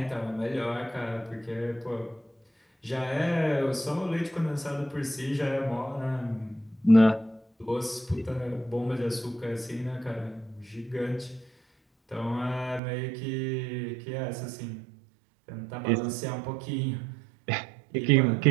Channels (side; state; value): left; drops out; at 12.8 s